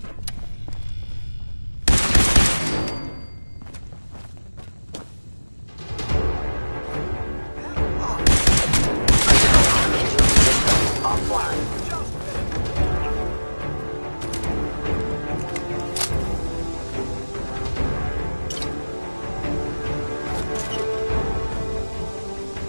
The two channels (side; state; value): both; inverted; correlation -1.00